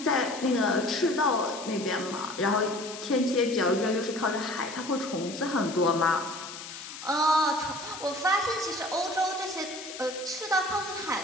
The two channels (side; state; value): left; noise; hiss, 11 dB below the sound